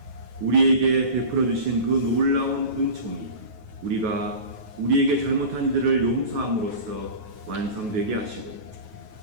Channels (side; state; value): left; late; 9.3 ms